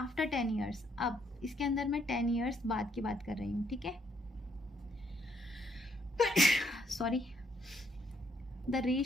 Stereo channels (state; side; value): normal; both; correlation 0.71